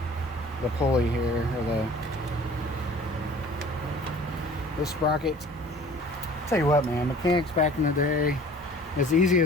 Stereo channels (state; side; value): normal; both; correlation 0.48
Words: pulley here, or the sprocket. Tell you what, man, mechanics back in the day, as easy